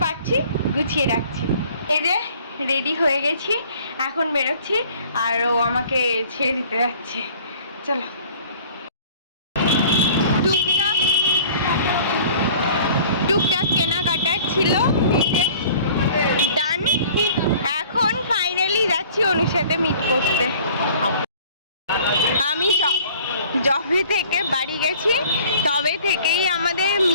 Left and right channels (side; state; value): both; inverted; correlation -0.50